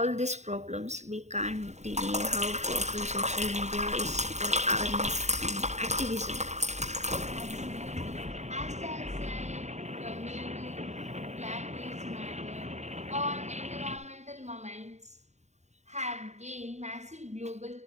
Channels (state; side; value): late; left; 0.33 ms